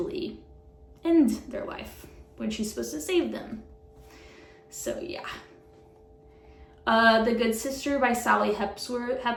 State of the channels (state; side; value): identical; both; correlation 1.00